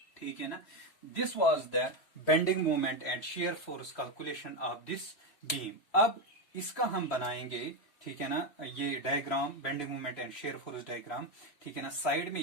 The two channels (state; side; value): late; right; 3.0 ms